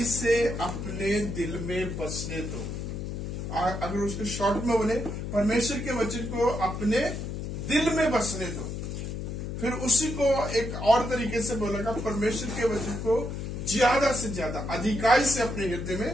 से अपने दिल में बसने दो। अगर उसके शॉर्ट में बोले, परमेश्वर के वचन को अपने दिल में बसने दो। फिर उसी को एक और तरीके से बोलेगा, परमेश्वर के वचन को ज्यादा से ज्यादा अधिकाई से अपने हृदय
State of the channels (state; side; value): noise; left; hum, 5 dB below the sound